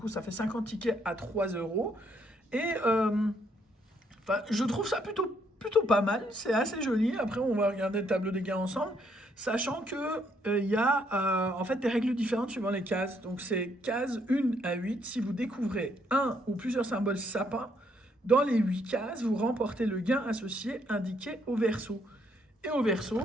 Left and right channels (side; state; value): both; normal; correlation 0.71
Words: ça fait 50 tickets à 3 euros. Et je trouve ça plutôt pas mal, c'est assez joli. Après on va regarder le tableau des gains ensemble, sachant que il y a en fait des règles différentes suivant les cases. Donc c'est case 1 à 8, si vous découvrez un ou plusieurs symboles sapin, dans les 8 cases, vous remportez le gain associé indiqué au verso. Et au verso,